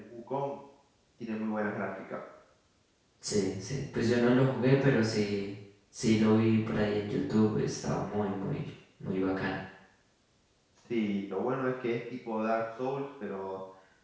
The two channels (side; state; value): both; identical; correlation 1.00